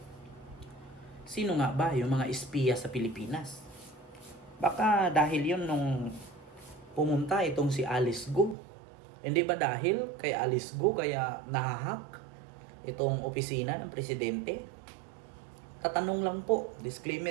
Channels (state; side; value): drops out; left; at 8.6 s